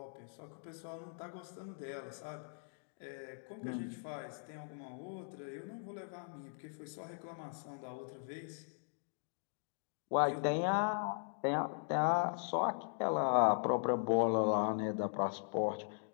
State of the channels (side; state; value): right; silent; digital silence